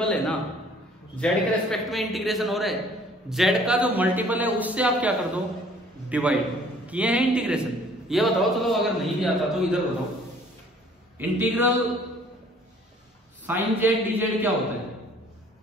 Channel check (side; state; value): both; normal; correlation 0.56